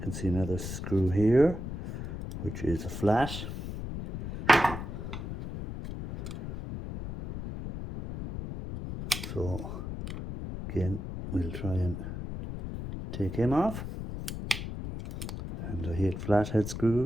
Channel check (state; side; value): noise; left; rumble, 7 dB below the sound